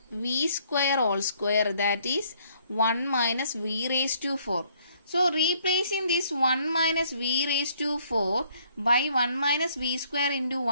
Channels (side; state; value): both; inverted; correlation -0.65